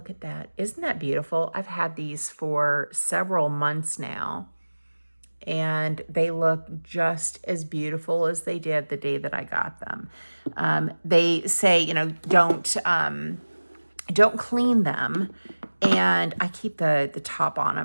at that. Isn't that beautiful? I've had these for several months now, and they look just as beautiful as they did the day that I got them. They say, don't clean them, and I keep the top on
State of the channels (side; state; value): both; inverted; correlation -1.00